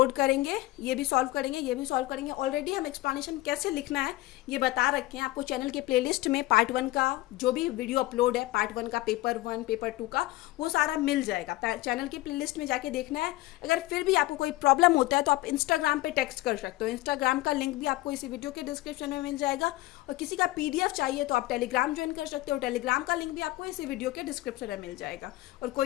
करेंगे, ये भी सॉल्व करेंगे, ये भी सॉल्व करेंगे। ऑलरेडी हम एक्सप्लेनेशन कैसे लिखना है ये बता रखे हैं आपको। चैनल के प्लेलिस्ट में पार्ट 1 का जो भी वीडियो अपलोड है, पार्ट 1 का, पेपर 1, पेपर 2 का, वो सारा मिल जाएगा। चैनल की प्लेलिस्ट में जाके देखना है। अगर फिर भी आपको कोई प्रॉब्लम होता है तो आप इंस्टाग्राम पे टेक्स्ट कर सकते हो। इंस्टाग्राम का लिंक भी आपको इसी वीडियो के डिस्क्रिप्शन में मिल जाएगा। और किसी का PDF चाहिए तो आप टेलीग्राम ज्वाइन कर सकते हो। टेलीग्राम का लिंक भी आपको इसी वीडियो के डिस्क्रिप्शन में मिल जाएगा। और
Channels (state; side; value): quieter; right; 18.2 dB